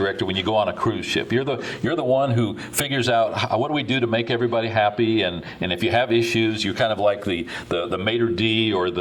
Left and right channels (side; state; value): both; identical; correlation 1.00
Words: when you go on a cruise ship. You're the one who figures out what do we do to make everybody happy, and if you have issues, you're kind of like the maitre d' or